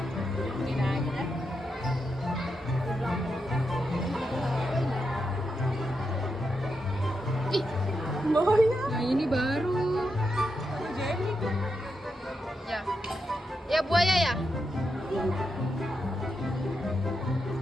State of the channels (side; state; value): both; normal; correlation 0.85